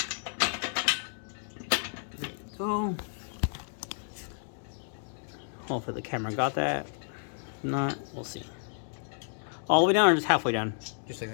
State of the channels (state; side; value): silent; right; digital silence